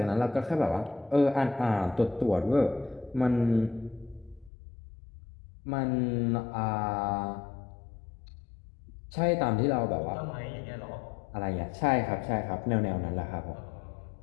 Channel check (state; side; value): drops out; right; at 4.5 s